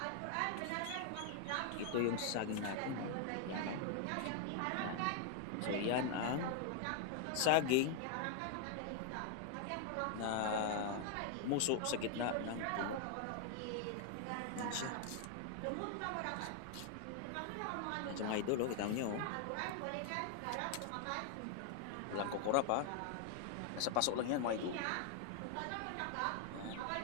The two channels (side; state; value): both; different; correlation 0.00